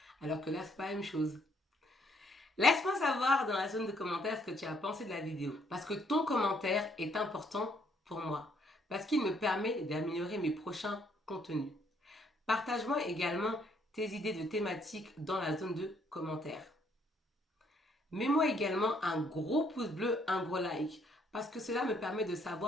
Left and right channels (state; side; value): normal; both; correlation 0.68